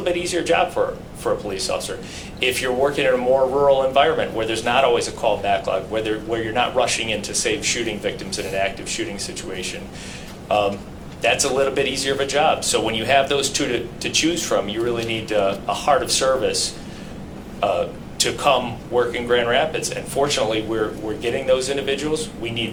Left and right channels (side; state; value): both; identical; correlation 1.00